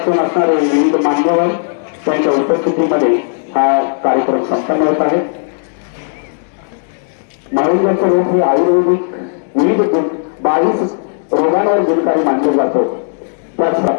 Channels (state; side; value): silent; right; digital silence